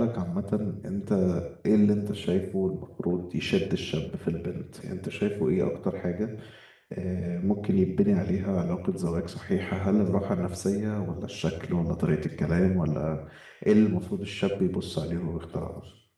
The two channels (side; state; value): both; identical; correlation 1.00